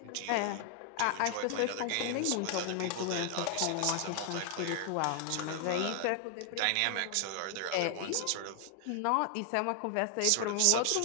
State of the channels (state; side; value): different; both; correlation 0.00